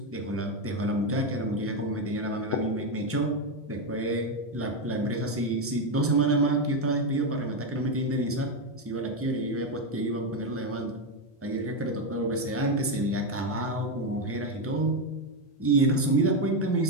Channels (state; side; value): normal; both; correlation 0.07